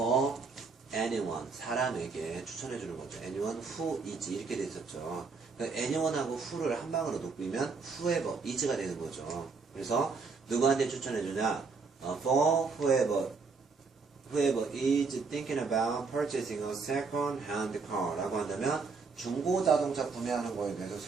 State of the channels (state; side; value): quieter; left; 4.6 dB